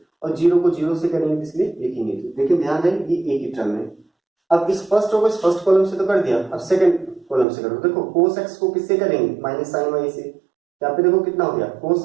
और जीरो को जीरो से करेंगे इसलिए लिखेंगे। देखिए ध्यान है ये एक ही टर्म है। अब इस फर्स्ट रो को इस फर्स्ट कॉलम से तो कर दिया, अब सेकंड कॉलम से करो। देखो cos x को किससे करेंगे, माइनस sin y से। यहाँ पे देखो कितना हो गया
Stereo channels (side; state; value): left; drops out; at 7.5 s